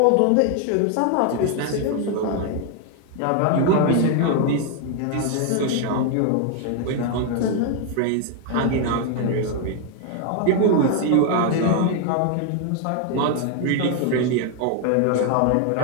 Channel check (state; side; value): different; both; correlation 0.00